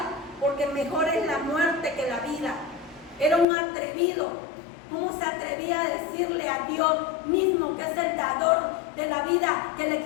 porque mejor es la muerte que la vida. Era un atrevido. ¿Cómo se atrevía a decirle a Dios mismo, que es el dador de la vida, que le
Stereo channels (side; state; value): right; drops out; at 3.5 s